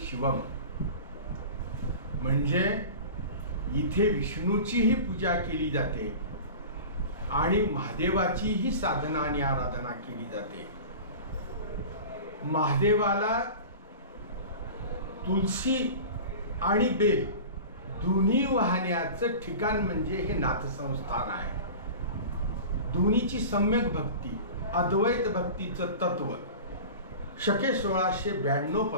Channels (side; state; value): both; inverted; correlation -0.35